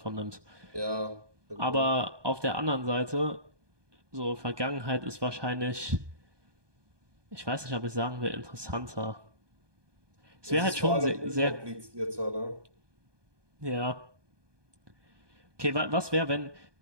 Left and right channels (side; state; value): left; late; 1.2 ms